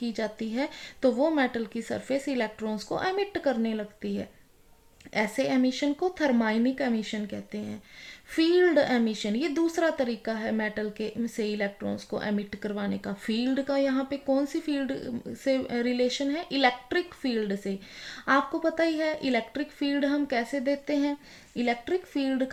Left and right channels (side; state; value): both; identical; correlation 1.00